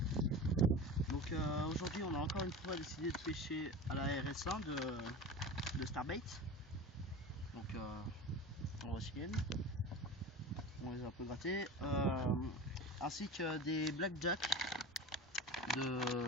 Donc aujourd'hui on a encore une fois décidé de pêcher à la RS1 de Starbait. Donc on va essayer. On les a un peu grattés. Ainsi que des blackjack de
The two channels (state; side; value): normal; both; correlation 0.31